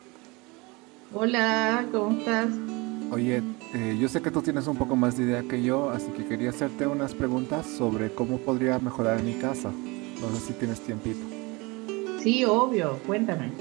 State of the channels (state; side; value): quieter; left; 25.6 dB